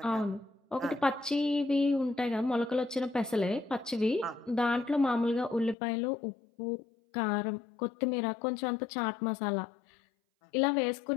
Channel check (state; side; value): drops out; right; at 5.8 s